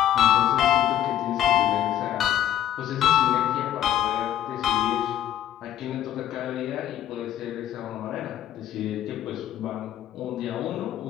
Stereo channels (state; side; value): quieter; right; 11.6 dB